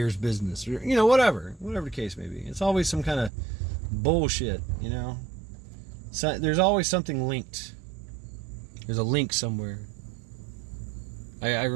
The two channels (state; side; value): drops out; left; at 3.3 s